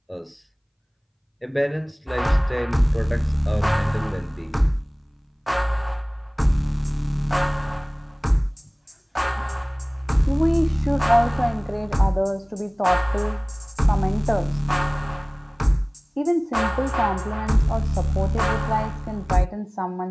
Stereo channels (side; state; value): both; identical; correlation 1.00